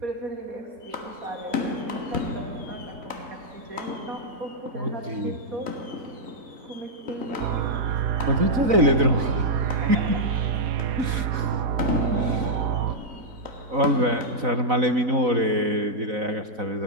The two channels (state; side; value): late; left; 4.0 ms